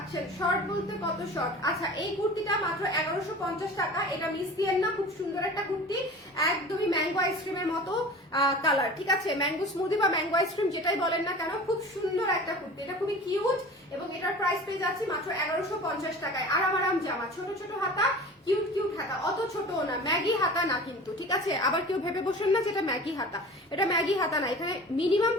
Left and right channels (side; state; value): both; normal; correlation 0.39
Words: শর্ট বলতে কত শর্ট। আচ্ছা, এই কুর্তিটা মাত্র 1150 টাকা। এটা মিস দিয়েন না, খুব সুন্দর একটা কুর্তি, একদমই ম্যাঙ্গো আইসক্রিমের মতো কালার, ঠিক আছে, ম্যাঙ্গো স্মুদি বা ম্যাঙ্গো আইসক্রিম যেটাই বলেন না কেন, খুব সুন্দর একটা কুর্তি, এটা খুবই কিউট, এবং এটার প্রাইস পেয়ে যাচ্ছি মাত্র 1150 টাকায়। আরাম জামা, ছোট হাতা, কিউট হাতা, অত ছোটও না, ম্যাগি হাতা না কিন্তু, ঠিক আছে, আবার কেউ ভেবে বসেন না যে এটা ম্যাগি হাতা, এটা ম্যাগি হাতা না, এখানে মিনিমাম